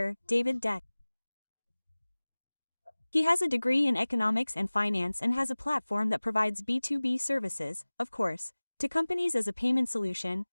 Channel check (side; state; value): both; inverted; correlation -1.00